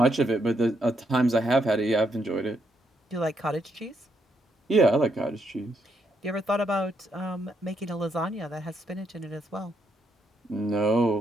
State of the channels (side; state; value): both; normal; correlation 0.77